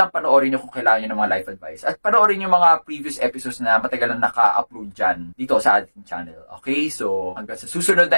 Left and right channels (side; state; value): both; inverted; correlation -1.00